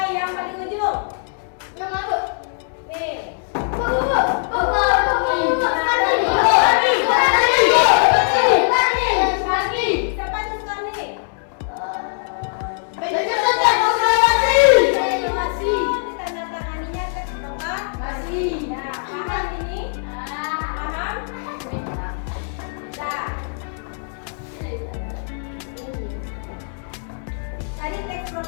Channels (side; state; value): right; silent; digital silence